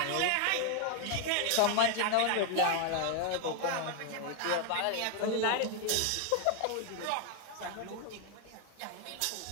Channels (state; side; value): different; both; correlation 0.01